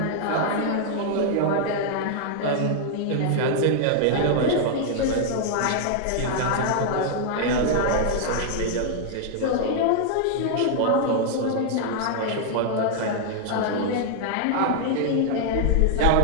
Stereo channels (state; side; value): different; both; correlation -0.01